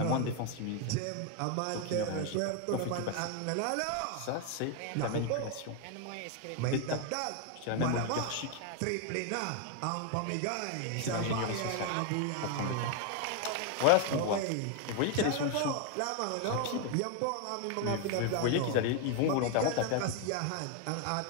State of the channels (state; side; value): different; both; correlation 0.01